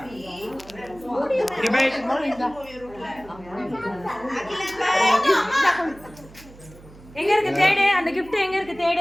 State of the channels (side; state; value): right; noise; hum, 21 dB below the sound